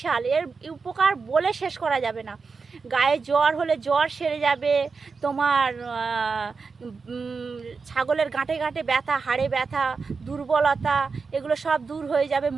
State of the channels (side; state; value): left; quieter; 4.8 dB